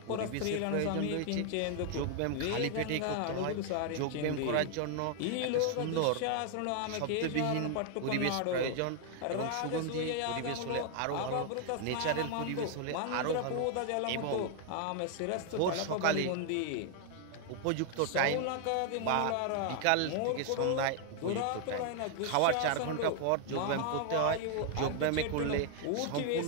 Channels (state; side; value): different; both; correlation 0.00